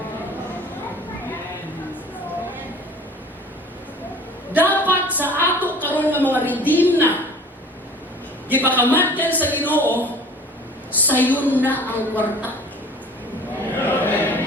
Dapat sa ato karon nga mga redeem na gipakamatyan sa Ginoo sayon na ang kwarta.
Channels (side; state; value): both; normal; correlation 0.45